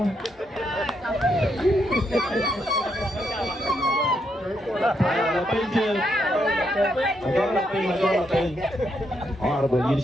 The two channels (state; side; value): normal; both; correlation 0.78